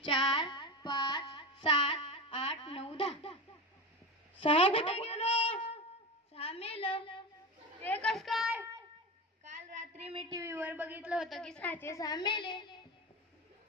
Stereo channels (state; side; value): normal; both; correlation 0.23